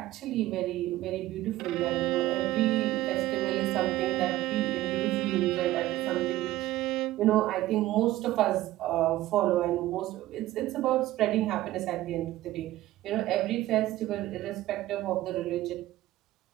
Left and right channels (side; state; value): left; quieter; 15.8 dB